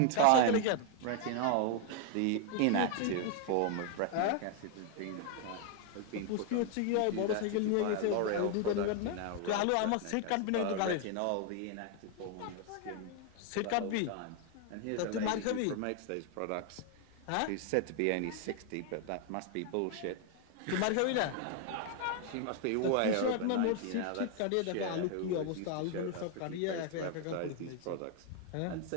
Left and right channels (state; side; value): different; both; correlation 0.01